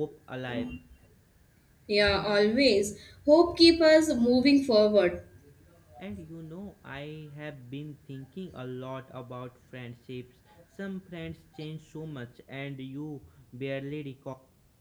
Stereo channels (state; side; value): identical; both; correlation 1.00